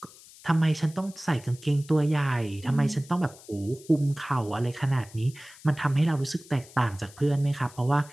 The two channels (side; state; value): left; noise; hiss, 21 dB below the sound